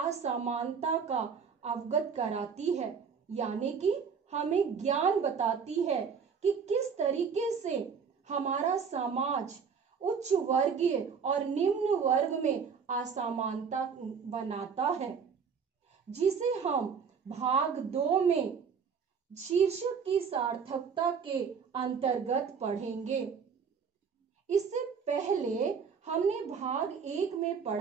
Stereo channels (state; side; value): quieter; left; 6.2 dB